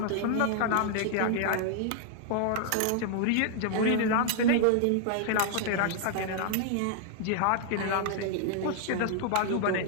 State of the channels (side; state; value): both; different; correlation -0.01